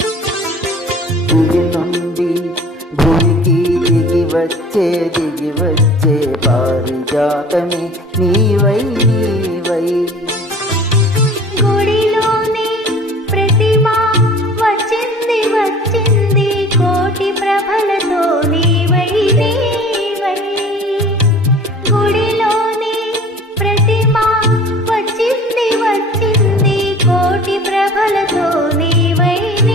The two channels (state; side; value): normal; both; correlation 0.45